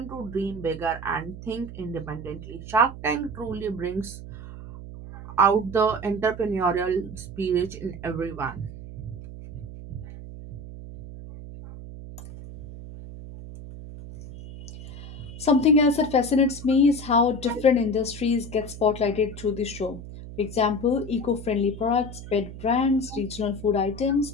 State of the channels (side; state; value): right; noise; hum, 12 dB below the sound